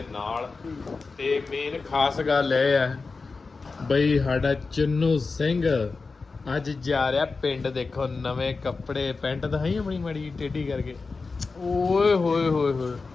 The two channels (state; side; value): quieter; right; 4.2 dB